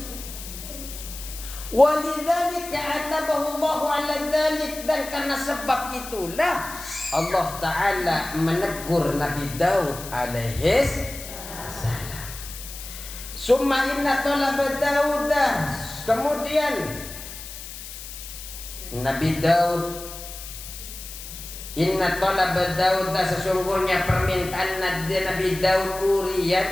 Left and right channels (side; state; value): left; noise; hiss, 12 dB below the sound